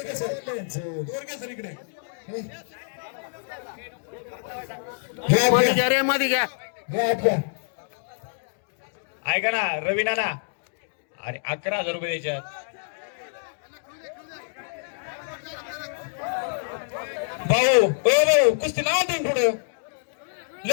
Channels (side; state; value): right; silent; digital silence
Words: सर इकडे मध्ये घ्या रे, मध्ये घ्या. ऐका ना रवी नाना, अरे 11,000 रुपये द्यायच्यात. भाऊ, ओ भाऊ, कुस्ती नाव तुम्ही पुढं